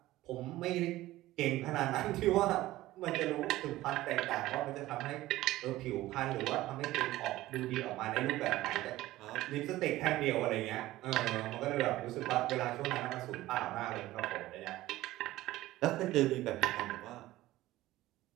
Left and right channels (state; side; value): quieter; left; 16.5 dB